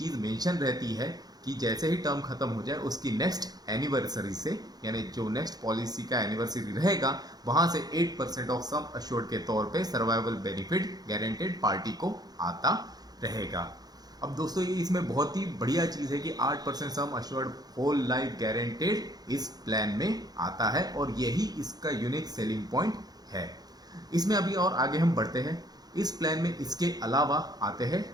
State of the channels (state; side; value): late; left; 0.19 ms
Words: मेंशन रहती है कि जैसे ही टर्म खत्म हो जाए उसकी नेक्स्ट एनिवर्सरी से, यानी जो नेक्स्ट पॉलिसी का एनिवर्सरी रहेगा वहां से 8% ऑफ सम अश्योर्ड के तौर पे सर्वाइवल बेनिफिट गारंटेड पार्टी को आता रहेगा। अब दोस्तों ये इसमें बहुत ही बढ़िया चीज़ है कि 8% sum assured whole life guaranteed इस प्लान में आता है और यही इसका यूनिक सेलिंग पॉइंट है। इसमें अभी और आगे हम बढ़ते हैं। इस प्लान में इसके अलावा आते हैं